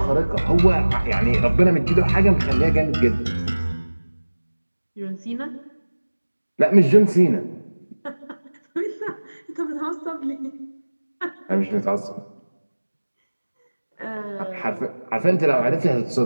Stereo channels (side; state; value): both; inverted; correlation -1.00